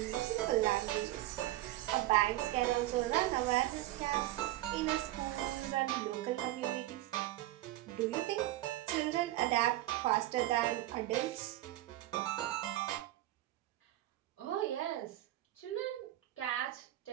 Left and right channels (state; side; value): quieter; left; 15.7 dB